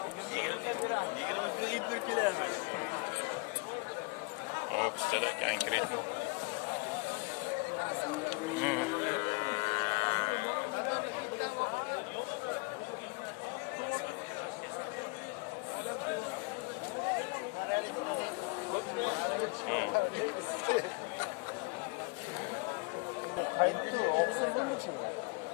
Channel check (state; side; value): quieter; right; 30.7 dB